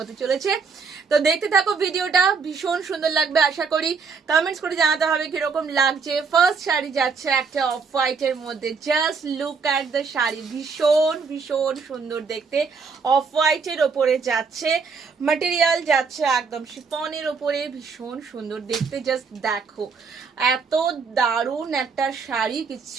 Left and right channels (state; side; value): quieter; left; 5.2 dB